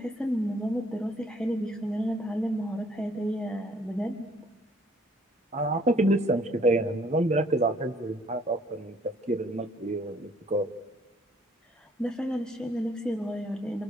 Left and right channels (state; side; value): normal; both; correlation 0.62